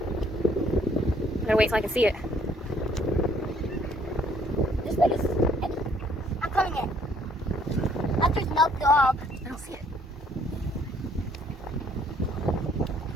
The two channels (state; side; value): normal; both; correlation 0.63